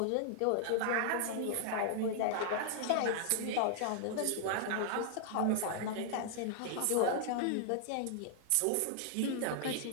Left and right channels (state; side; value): different; both; correlation -0.01